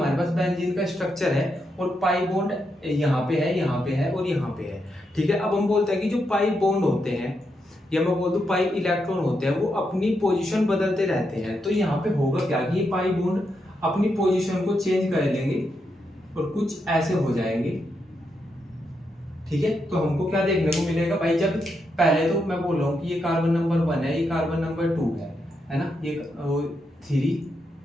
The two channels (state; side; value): normal; both; correlation 0.83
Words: पास बेंजीन का स्ट्रक्चर है और पाई बॉन्ड यहाँ पे है, यहाँ पे है और यहाँ पे है, ठीक है। अब हम बोलते हैं कि जो पाई बॉन्ड होते हैं या मैं बोल दूं पाई इलेक्ट्रॉन होते हैं वो अपनी पोजीशन बदलते रहते हैं। तो यहाँ पे होगा क्या कि ये पाई बॉन्ड अपनी पोजीशन को चेंज कर लेंगे और कुछ ऐसे हो जाएंगे, ठीक है। तो हमको क्या देखने को मिलेगा भाई, जब पहले तो मैं बोल रहा हूँ कि ये कार्बन नंबर 1 है, ये कार्बन नंबर 2 है ना, ये 3